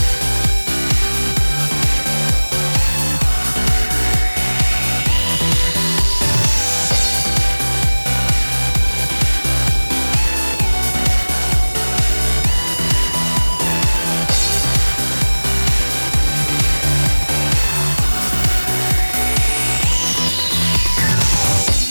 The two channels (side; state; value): both; inverted; correlation -1.00